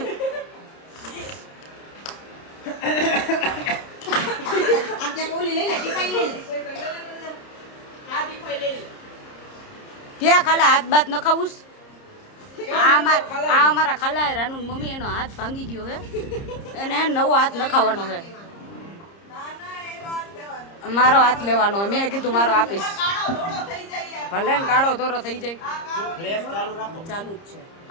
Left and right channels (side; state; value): right; late; 30 ms